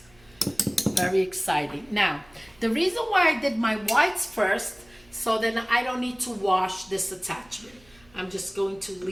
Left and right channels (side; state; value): right; noise; hum, 28 dB below the sound